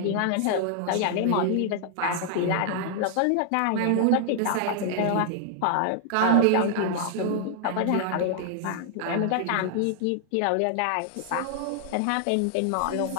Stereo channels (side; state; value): both; different; correlation 0.00